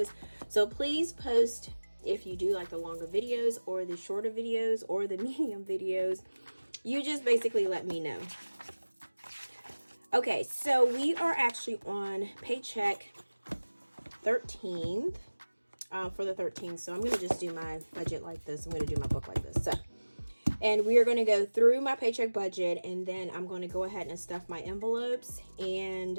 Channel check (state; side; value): inverted; both; correlation -1.00